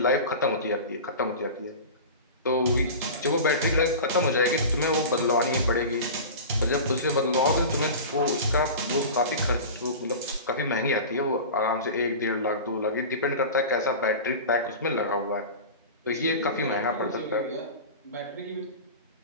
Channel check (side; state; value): both; inverted; correlation -0.32